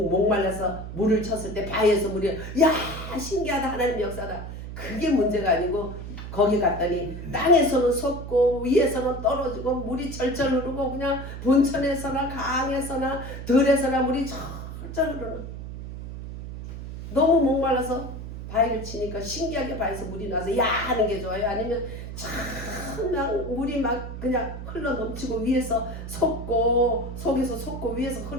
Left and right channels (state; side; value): noise; right; hum, 9 dB below the sound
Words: 물을 쳤을 때 바위에서 물이 야 신기하다 하나님 역사다. 그게 문제가 아니고 거기 갔더니 땅에서는 솟고 위에서는 떨어지고 물이 절절 흐르고 그냥 본천에서나 강에서나 들에서나 물이 절절 흐르는. 너무 목말라서 바위를 치니까 신기하게 바위에서 물이 나서 야 하는 게 좋아요? 아니면 그냥 물이 막 그냥 흘러 넘치고 위에서 솟고 속에서 솟고 위에서